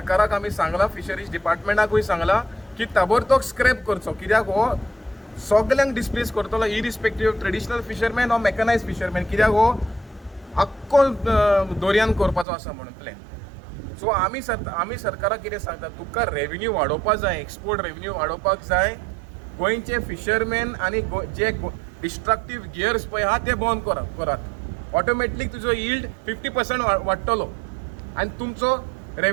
आमी सांगला, फिशरीज डिपार्टमेंटाकूय सांगला की ताबडतोब स्क्रॅप करचो. कित्याक हो सगल्यांक डिस्प्लेस करतलो irrespective of traditional fisherman or mechanise fisherman. कित्याक हो आख्खो दर्यान करपाचो आसा म्हणून प्लॅन. सो आमी सरकाराक कितें सांगता, तुका रेव्हेन्यू वाडोवपाक जाय, एक्सपोर्ट रेव्हेन्यू वाडोवपाक जाय. गोंयचे फिशरमॅन आनी जे डिस्ट्रक्टीव गियर्स पळय आहा ते बंद करात. ऑटोमॅटिक तुजो यील्ड 50% वाडटलो आनी तुमचो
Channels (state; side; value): drops out; left; at 12.5 s